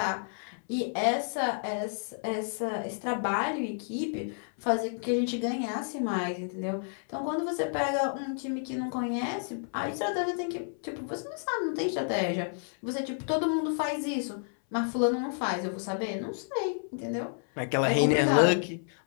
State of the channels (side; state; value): right; silent; 58 dB below the other